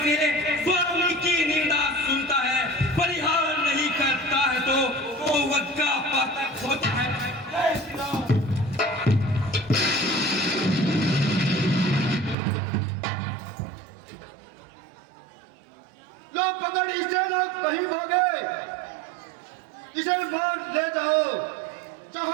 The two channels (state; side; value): drops out; left; at 12.4 s